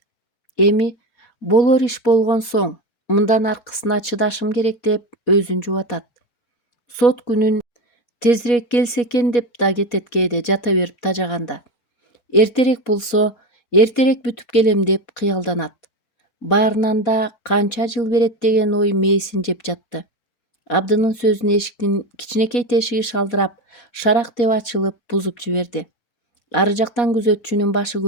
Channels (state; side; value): late; right; 4.2 ms